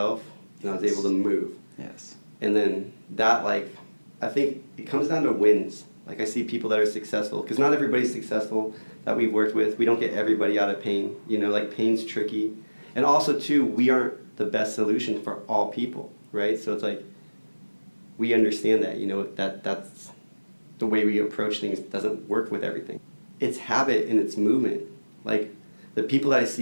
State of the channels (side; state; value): both; inverted; correlation -1.00